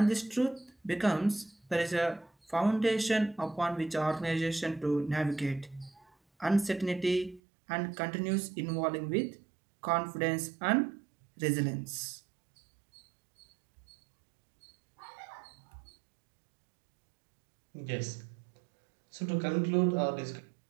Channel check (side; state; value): left; drops out; at 7.4 s